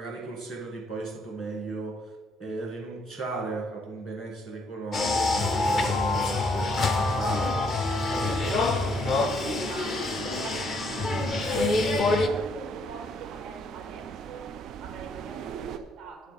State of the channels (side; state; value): both; normal; correlation 0.70